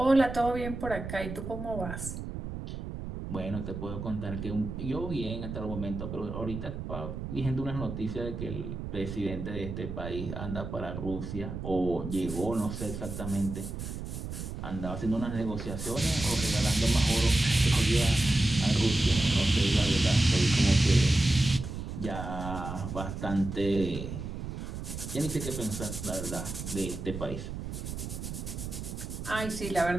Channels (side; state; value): right; noise; rumble, 7 dB below the sound